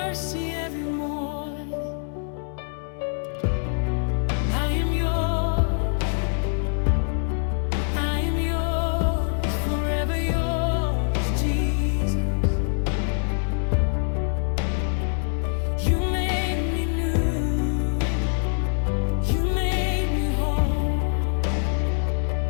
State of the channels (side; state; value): right; silent; digital silence